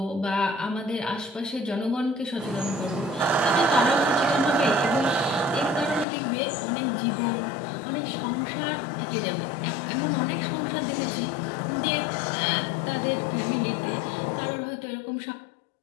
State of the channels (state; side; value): drops out; right; at 6.1 s